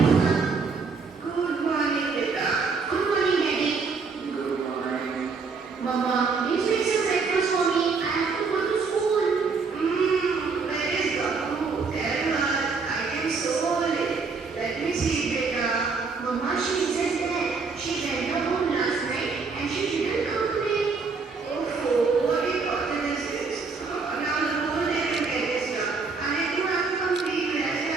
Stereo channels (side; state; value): left; quieter; 4.7 dB